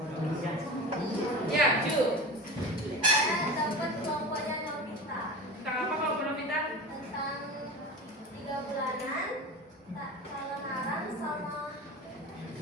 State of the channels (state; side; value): normal; both; correlation 0.30